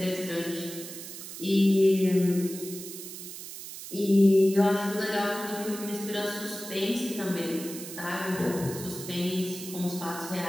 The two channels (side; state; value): right; noise; hiss, 11 dB below the sound